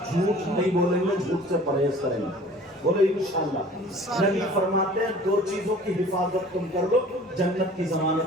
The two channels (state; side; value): normal; both; correlation 0.47